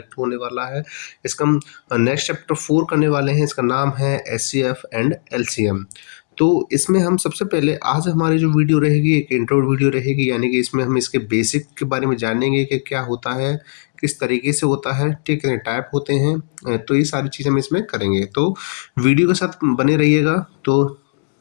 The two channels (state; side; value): silent; right; digital silence